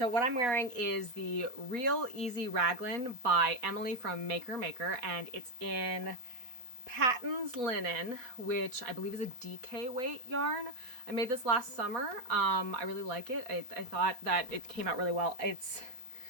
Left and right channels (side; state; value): left; late; 4.1 ms